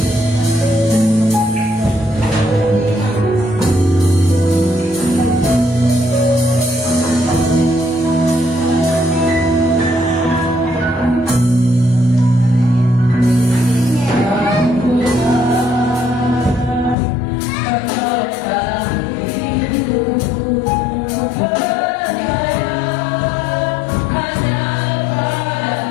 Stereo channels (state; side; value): drops out; right; at 16.9 s